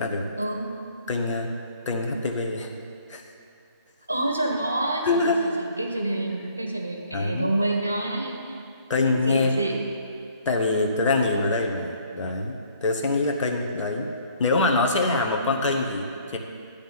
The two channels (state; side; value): inverted; both; correlation -0.59